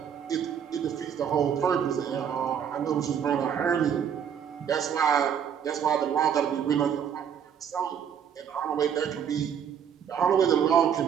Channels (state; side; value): quieter; left; 8.3 dB